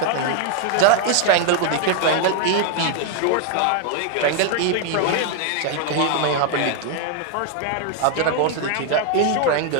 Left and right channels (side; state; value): both; different; correlation 0.00